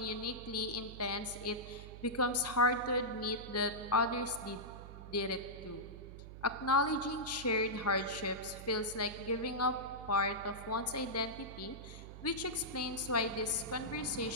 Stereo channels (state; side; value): noise; right; hum, 13 dB below the sound